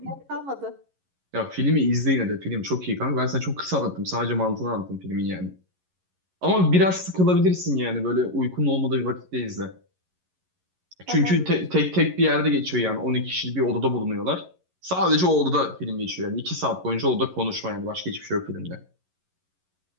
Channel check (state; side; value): late; left; 11 ms